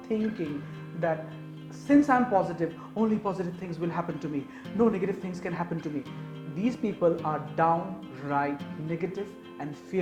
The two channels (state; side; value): identical; both; correlation 1.00